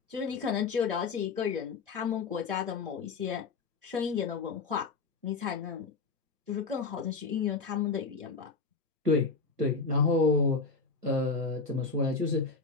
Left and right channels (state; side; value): quieter; right; 4.4 dB